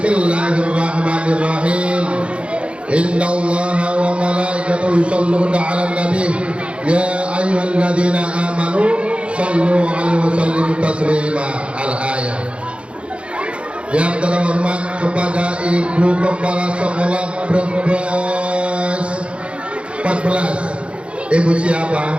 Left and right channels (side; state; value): left; late; 0.059 ms